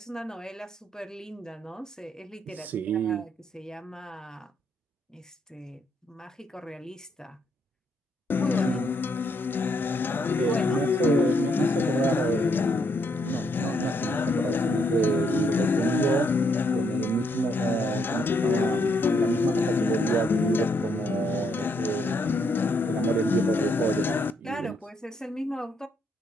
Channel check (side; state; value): both; normal; correlation 0.74